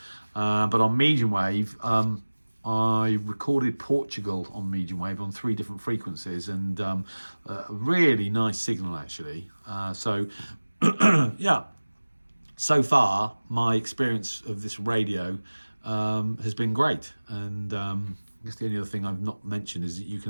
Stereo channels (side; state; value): both; inverted; correlation -1.00